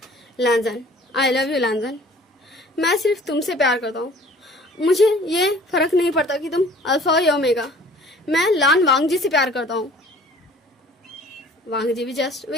लैंजन आई लव यू लैंजन, मैं सिर्फ तुमसे प्यार करता हूँ, मुझे ये फ़र्क नहीं पड़ता कि तुम अल्फा हो या ओमेगा, मैं लान वांग जी से प्यार करता हूँ। वांग जी भी जस्ट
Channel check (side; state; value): both; normal; correlation 0.51